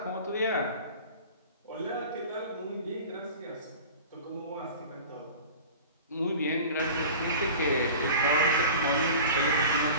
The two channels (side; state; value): both; inverted; correlation -0.38